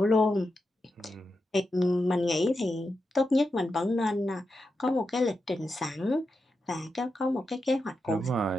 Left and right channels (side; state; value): both; normal; correlation 0.88